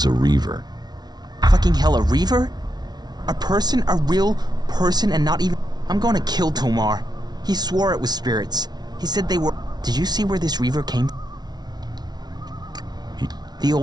a reaver. Fucking hell, a reaver? A person? A real person and not even... I'm gonna kill Tomar. He swore it was spirits. He said they were... Did you see where this reaver came from? The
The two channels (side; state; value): left; late; 0.19 ms